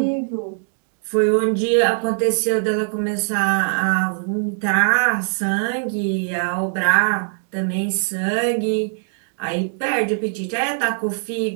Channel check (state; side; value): silent; left; digital silence